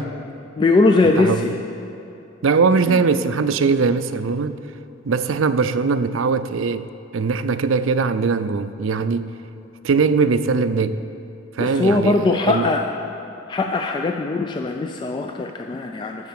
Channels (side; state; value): both; normal; correlation 0.30